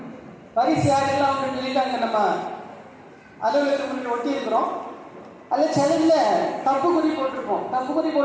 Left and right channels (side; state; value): both; identical; correlation 1.00